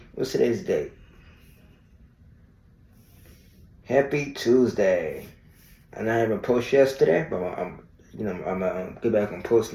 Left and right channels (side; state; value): both; identical; correlation 1.00